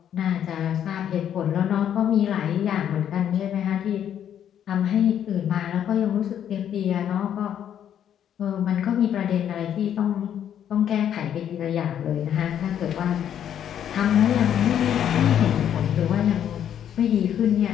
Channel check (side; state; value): right; quieter; 9.7 dB